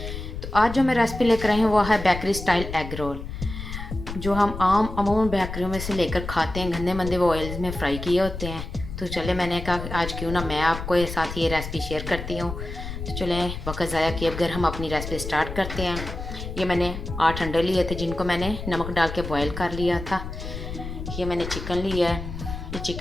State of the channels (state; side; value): noise; left; rumble, 8 dB below the sound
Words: तो आज जो मैं रेसिपी लेकर आई हूँ वो है बेकरी स्टाइल एग रोल, जो हम अमूमन बेकरियों में से लेकर खाते हैं, गंदे मंदे वो ऑयल्स में फ्राई किए होते हैं। तो चले, मैंने कहा आज क्यों ना मैं आपको ये साथ ये रेसिपी शेयर करती हूँ। तो चलें वक्त ज़ाया किए बगैर हम अपनी रेसिपी स्टार्ट करते हैं। ये मैंने 8 अंडे लिए थे जिनको मैंने नमक डाल के बॉयल कर लिया था। ये मैंने चिकन लिया है, ये